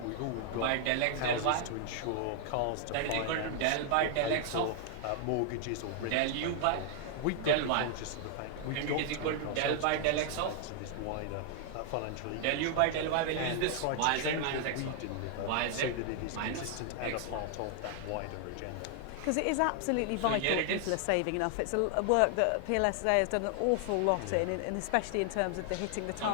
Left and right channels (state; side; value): different; both; correlation 0.00